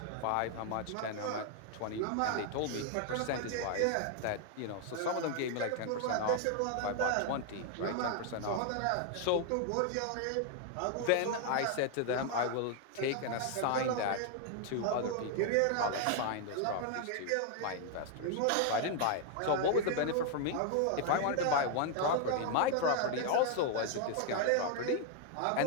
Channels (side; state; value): both; different; correlation 0.00